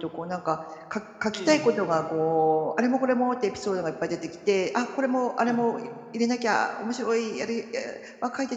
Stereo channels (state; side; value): identical; both; correlation 1.00